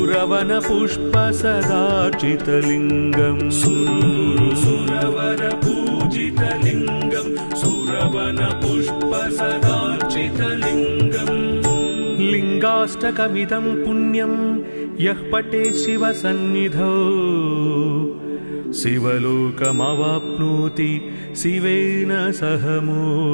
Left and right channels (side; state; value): both; inverted; correlation -1.00